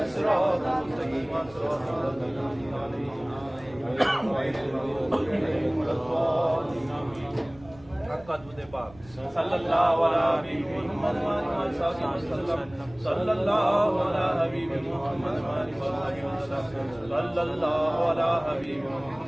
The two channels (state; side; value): noise; right; rumble, 23 dB below the sound